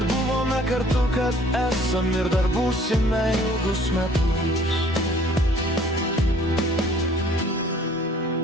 kartu, kad esam ir dar būsime ilgus metus.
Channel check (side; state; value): both; normal; correlation 0.55